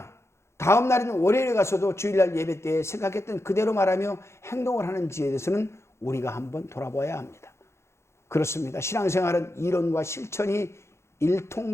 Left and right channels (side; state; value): right; late; 0.13 ms